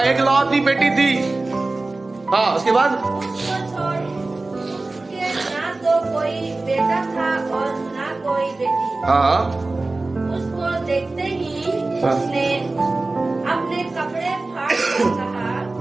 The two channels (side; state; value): left; quieter; 3.2 dB